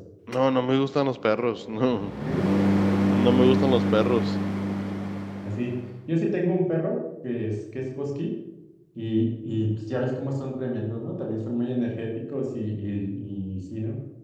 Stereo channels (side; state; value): both; identical; correlation 1.00